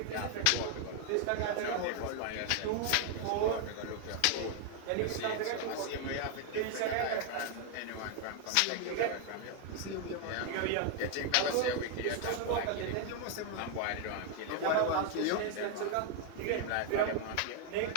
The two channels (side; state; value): both; different; correlation 0.00